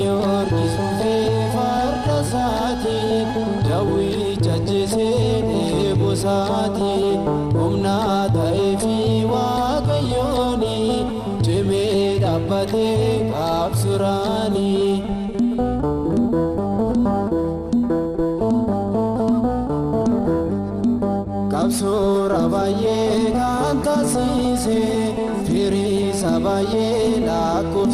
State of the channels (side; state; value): both; identical; correlation 1.00